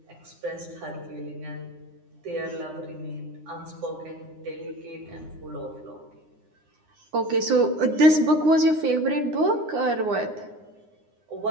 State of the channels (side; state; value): left; late; 9.7 ms